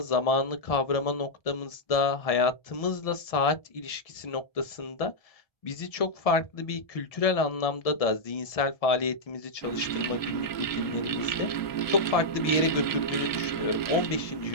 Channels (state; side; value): late; right; 1.7 ms